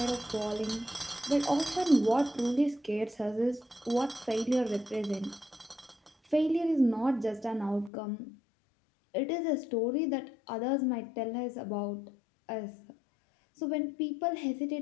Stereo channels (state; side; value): drops out; right; at 7.9 s